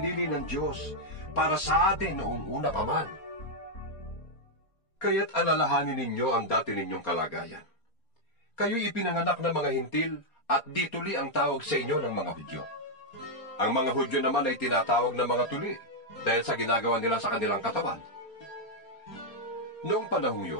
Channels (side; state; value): right; late; 4.3 ms